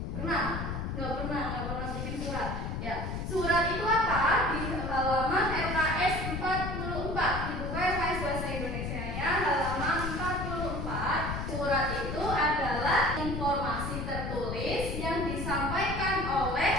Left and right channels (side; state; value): left; noise; rumble, 4 dB below the sound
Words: Pernah? Nggak pernah bikin surat. Ya, surat itu apa? Di halaman LKS 44, dibuka LKS Bahasa Indonesia ya, halaman 44. Surat itu adalah informasi tertulis yang disampaikan oleh